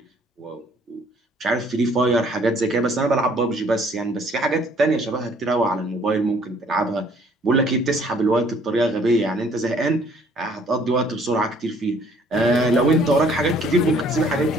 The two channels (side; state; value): both; normal; correlation 0.60